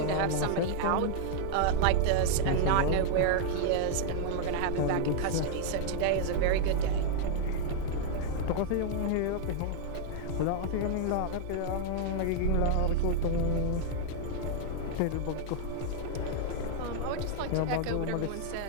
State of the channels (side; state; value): both; different; correlation -0.01